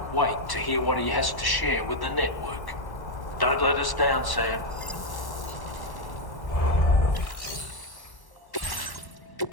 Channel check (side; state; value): right; late; 1.1 ms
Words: wait to hear what he has to share with the network. Don't let us down, Sam.